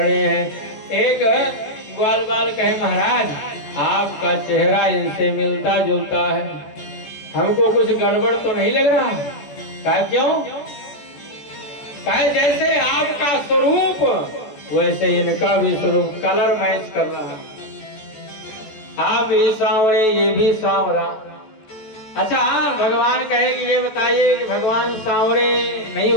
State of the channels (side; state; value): right; late; 14 ms